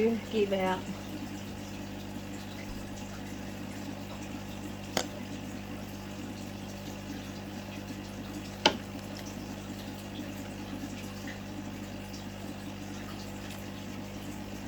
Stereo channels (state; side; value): identical; both; correlation 1.00